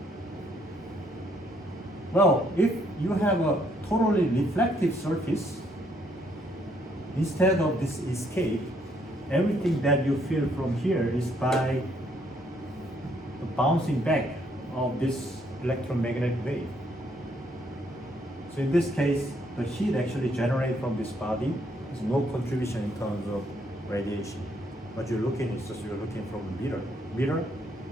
Well, if you have a totally reflective surface, instead of this escape, everything that you feel from here is by the bouncing back of this electromagnetic wave. So in this case, the heat actually generated from this body is no contribution in terms of radiation. What you're looking is just you're looking from a mirror,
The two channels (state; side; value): normal; both; correlation 0.70